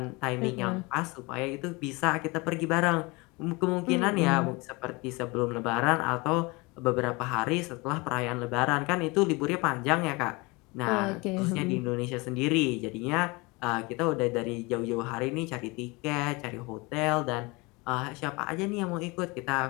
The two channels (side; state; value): right; quieter; 25.7 dB